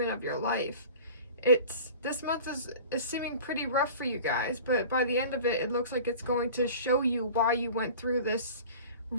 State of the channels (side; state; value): both; inverted; correlation -0.40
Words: of your life. This month is seeming pretty rough for you guys, but by the end of it, it looks like it's going to show you why you went through this